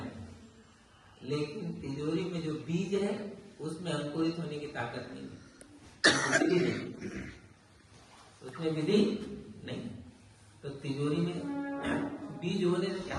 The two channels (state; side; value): identical; both; correlation 1.00